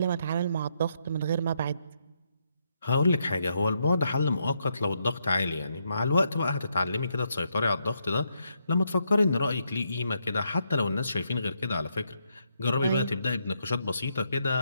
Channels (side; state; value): both; inverted; correlation -0.79